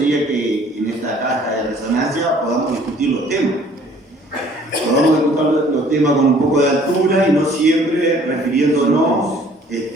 que en esta caja de resonancia podamos discutir los temas. Podamos discutir los temas con un poco de altura y no siempre refiriéndonos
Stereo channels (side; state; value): both; normal; correlation 0.56